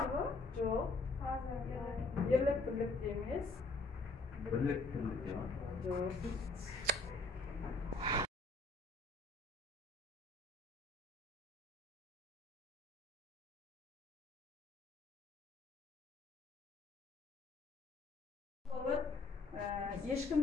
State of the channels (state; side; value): quieter; right; 3.3 dB